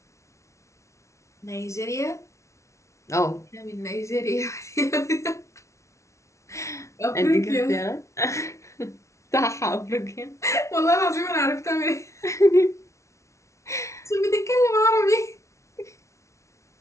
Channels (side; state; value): right; late; 0.14 ms